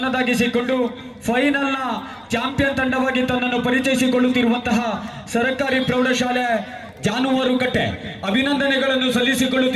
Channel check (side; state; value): both; identical; correlation 1.00